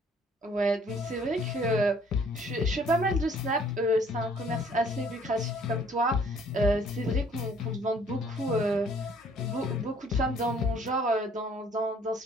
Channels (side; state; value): both; normal; correlation 0.59